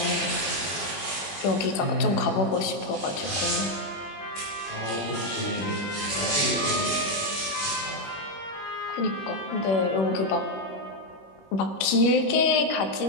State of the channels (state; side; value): late; right; 21 ms